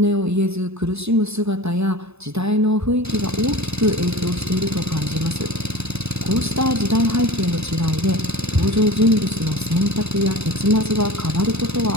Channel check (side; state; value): left; late; 0.80 ms